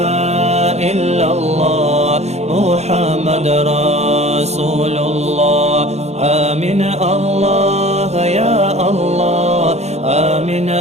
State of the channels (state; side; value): late; left; 0.32 ms